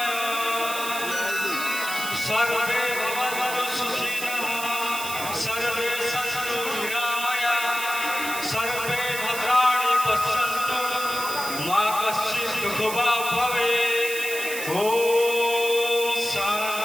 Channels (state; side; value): noise; right; hiss, 7 dB below the sound